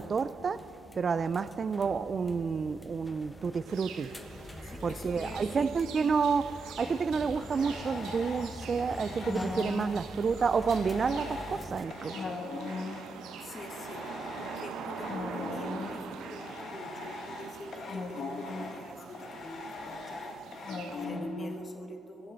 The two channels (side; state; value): left; quieter; 3.9 dB